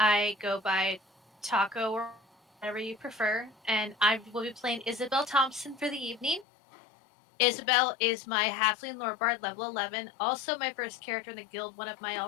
go by Taco or whatever you prefer, and I will be playing Isabel Thompson for the evening. Isabel is my halfling lorebard, level 11. Also, my first character in the guild, one of my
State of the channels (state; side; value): drops out; right; at 6.5 s